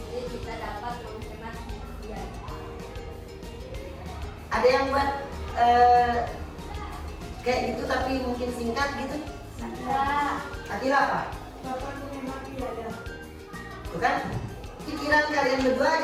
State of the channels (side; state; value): both; identical; correlation 1.00